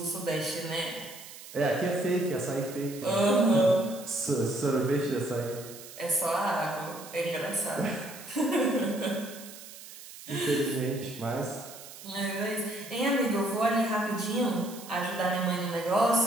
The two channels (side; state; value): right; noise; hiss, 15 dB below the sound